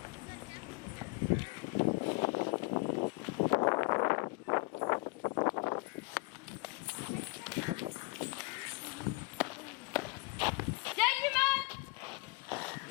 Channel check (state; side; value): quieter; right; 27.7 dB